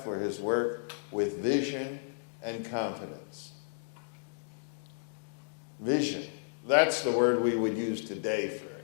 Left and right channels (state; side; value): silent; right; digital silence